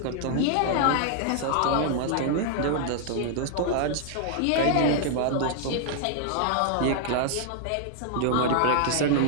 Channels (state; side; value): different; both; correlation -0.01